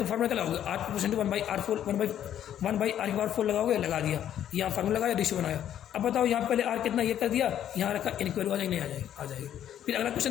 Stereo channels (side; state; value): right; quieter; 10.6 dB